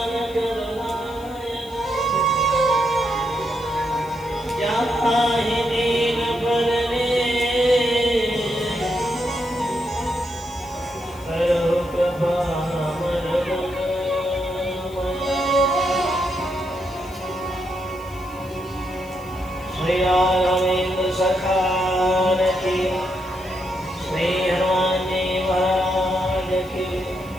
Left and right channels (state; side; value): noise; left; hiss, 24 dB below the sound